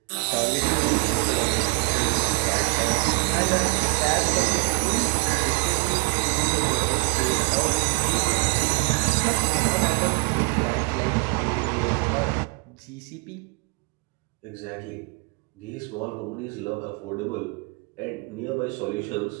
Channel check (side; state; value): left; quieter; 32.7 dB